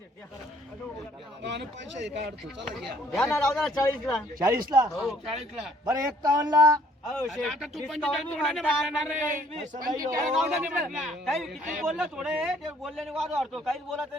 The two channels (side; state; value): both; normal; correlation 0.60